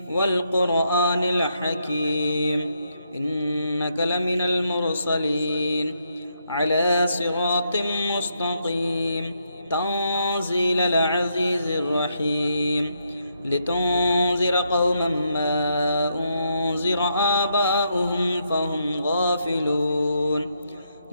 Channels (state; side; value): inverted; both; correlation -0.78